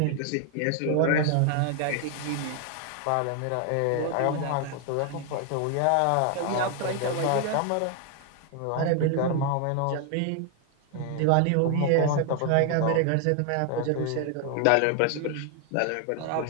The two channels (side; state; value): both; different; correlation 0.00